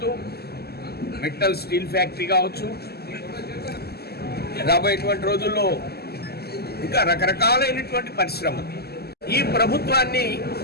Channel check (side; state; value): right; late; 0.46 ms